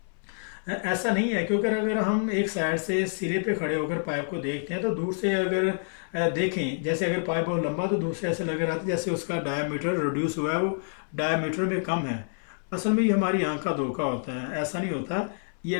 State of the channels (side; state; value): right; silent; 60 dB below the other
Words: ऐसा नहीं है, क्योंकि अगर हम एक साइड से सिरे पे खड़े होकर पाइप को देखते हैं तो दूर से अगर देखें, जैसे अगर पाइप बहुत लंबा तो दूर से ऐसे लग रहा था जैसे उसका डायमीटर रिड्यूस हुआ है, वो डायमीटर में कम है। असल में ये हमारी आंख का धोखा होता है, ऐसा नहीं होता। ये